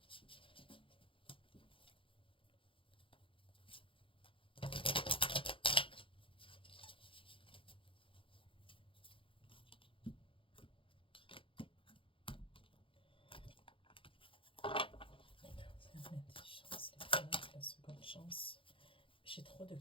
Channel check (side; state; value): right; late; 0.25 ms